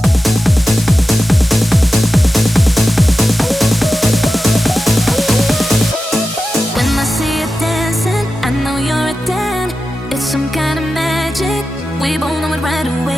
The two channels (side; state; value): both; normal; correlation 0.93